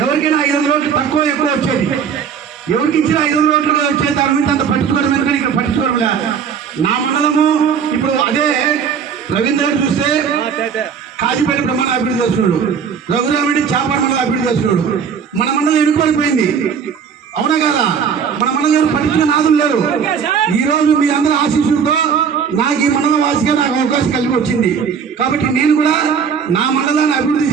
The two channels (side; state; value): left; quieter; 6.9 dB